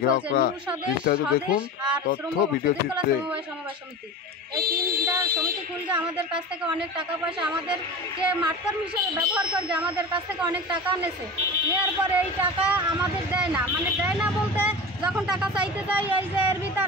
গ্রাহকরা। বিস্তারিত দেখুন তথ্য ভিডিও চিত্রে। এই তিনটা সমিতি খুলতে আমাদের কাছ থেকে অনেক টাকা পয়সা আমাদেরকে মাঠকর্মী হিসেবে ব্যবহার করে আমাদের কাছ থেকে অনেক টাকা নিয়েছে। নেওয়ার পরে এই টাকা আমাদের দেয় না, মানে দেয় না বলতে যখন টাকা চাইতে যাই এই যে এর ভিতর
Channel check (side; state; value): both; normal; correlation 0.31